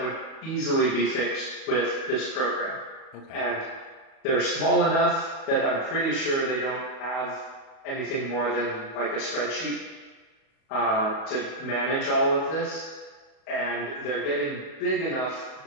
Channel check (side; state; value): right; late; 37 ms